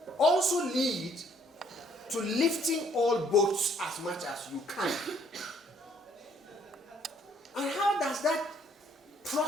also lead to lifting all boats as much as you can And how does that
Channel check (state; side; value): normal; both; correlation 0.64